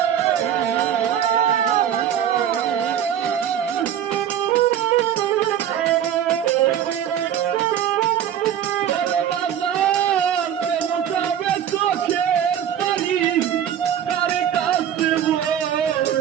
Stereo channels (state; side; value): quieter; left; 9.8 dB